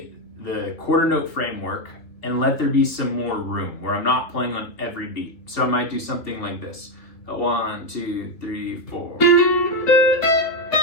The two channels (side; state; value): right; late; 2.8 ms